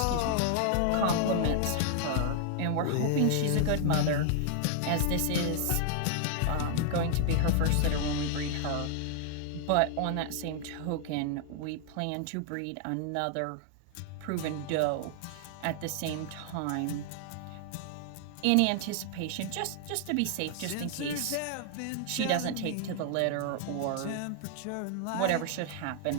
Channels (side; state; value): both; different; correlation 0.00